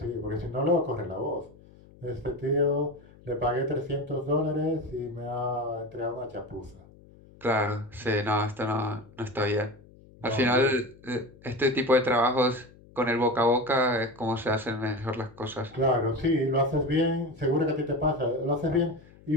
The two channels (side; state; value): left; noise; hum, 24 dB below the sound